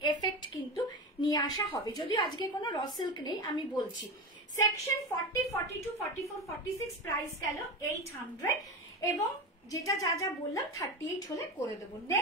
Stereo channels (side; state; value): both; normal; correlation 0.22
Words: এফেক্ট কিন্তু নিয়ে আসা হবে। যদিও আজকে কোনো র সিল্ক নেই, আমি বলছি। সেকশন 40, 42, 44, 46, প্রাইস গেল 800। এবং যেটা যা যা বললাম 38 হলে করে দেবো।